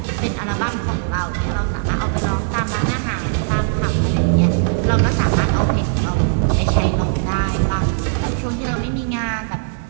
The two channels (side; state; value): left; silent; digital silence